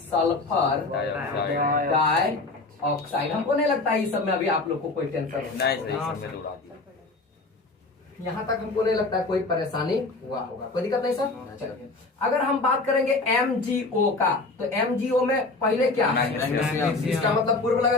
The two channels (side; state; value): right; quieter; 3.4 dB